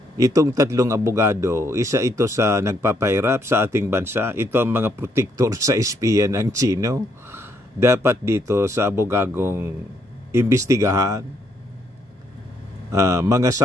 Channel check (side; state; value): both; normal; correlation 0.73